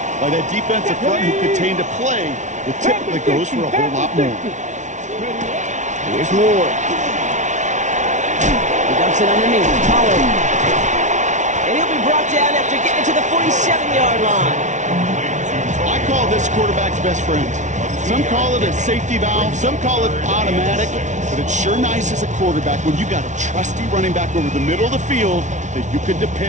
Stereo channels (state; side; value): late; left; 0.35 ms